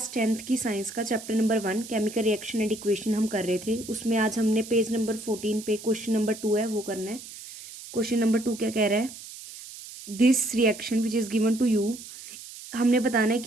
10th की science का chapter number 1 chemical reaction and equation हम कर रहे थे। उसमें आज हमने पेज नंबर 14 पे क्वेश्चन नंबर 2 है वो करना है। क्वेश्चन नंबर 2 क्या कह रहा है? This reaction which is given to you, हमने बताना है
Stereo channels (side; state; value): right; noise; hiss, 14 dB below the sound